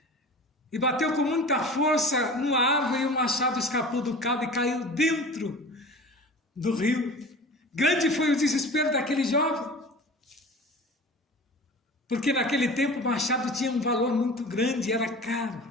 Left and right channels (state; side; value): normal; both; correlation 0.38